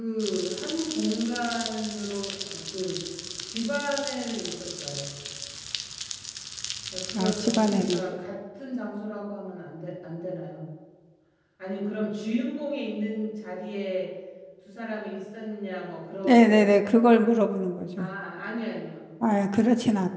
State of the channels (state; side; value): identical; both; correlation 1.00